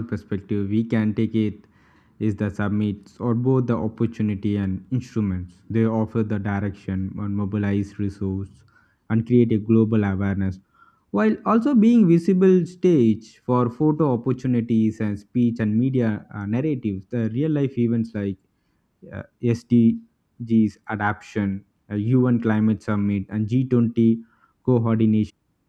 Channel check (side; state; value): both; identical; correlation 1.00